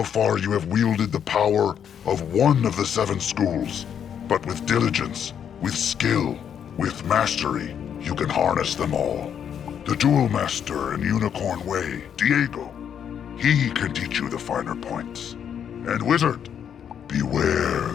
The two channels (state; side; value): quieter; right; 8.5 dB